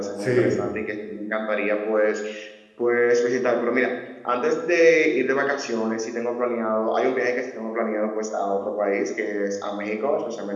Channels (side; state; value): both; identical; correlation 1.00